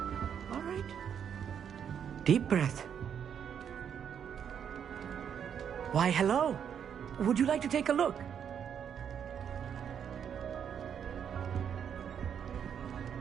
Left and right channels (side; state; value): left; quieter; 8.2 dB